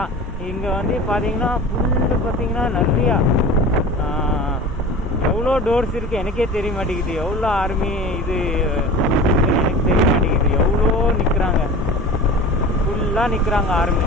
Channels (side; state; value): both; normal; correlation 0.36